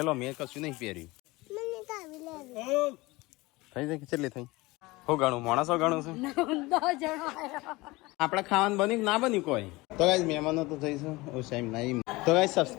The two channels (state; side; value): quieter; right; 21.8 dB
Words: મેં કશું નહીં પહેર્યું. થઈ જાય કેટલી થઈ હું ગણું માણસો ગણું છું આપણે ખાવાનું બન્યું ના બન્યું કોઈ. તો ગાઈસ મહેમાનો તો જઈશું ઓછાઈમ નહીં. તો ગાઈસ